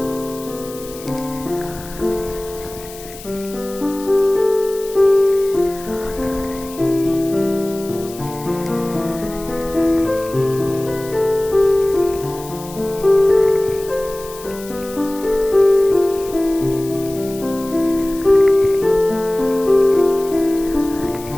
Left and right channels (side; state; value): left; noise; hiss, 17 dB below the sound